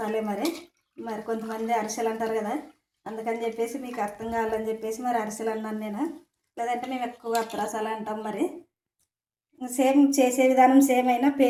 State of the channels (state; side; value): identical; both; correlation 1.00